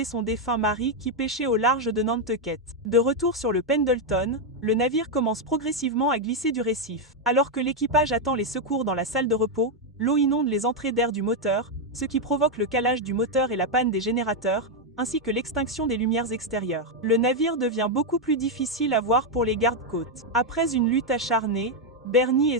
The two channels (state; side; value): normal; both; correlation 0.02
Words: son défunt mari qui pêchait au large de Nantucket. De retour sur le Pendleton, le navire commence progressivement à glisser du récif. Alors que l'équipage attend les secours dans la salle de repos, l'eau inonde les entrées d'air du moteur, ce qui provoque le calage du moteur et la panne des générateurs, ainsi que l'extinction des lumières extérieures. Le navire devient beaucoup plus difficile à voir pour les gardes-côtes. Après une lutte acharnée, Bernie et